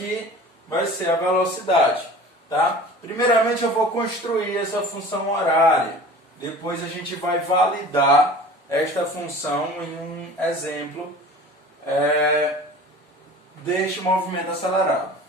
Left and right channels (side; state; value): both; normal; correlation 0.41